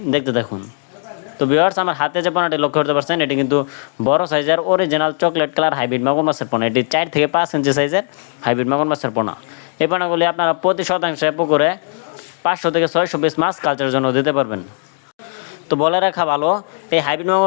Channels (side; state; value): right; silent; 57 dB below the other